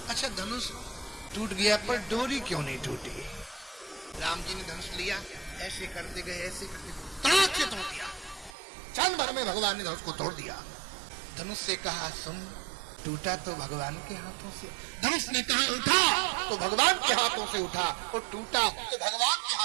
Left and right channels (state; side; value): drops out; left; at 8.5 s